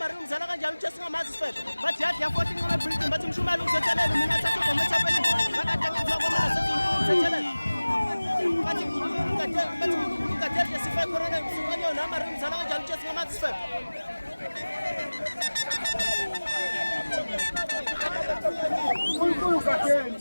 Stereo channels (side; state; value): both; inverted; correlation -1.00